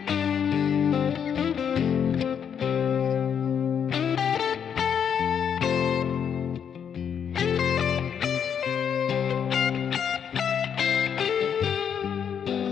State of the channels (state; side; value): quieter; right; 7.9 dB